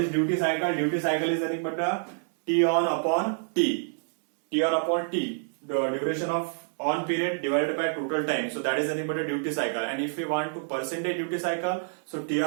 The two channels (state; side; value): silent; left; digital silence